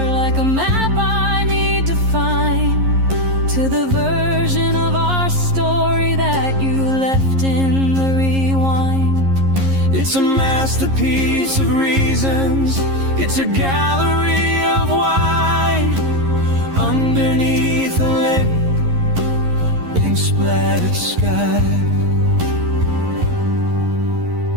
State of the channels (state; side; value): late; left; 11 ms